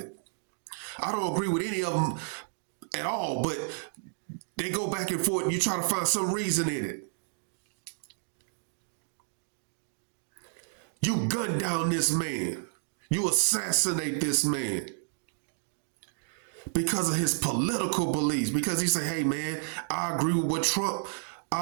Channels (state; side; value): silent; left; digital silence